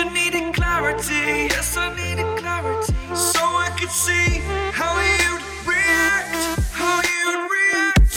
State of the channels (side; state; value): both; identical; correlation 1.00